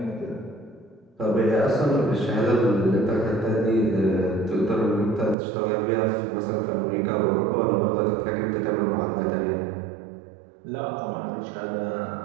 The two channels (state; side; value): drops out; left; at 5.4 s